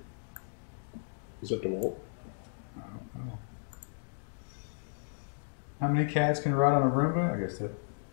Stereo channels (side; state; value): right; silent; digital silence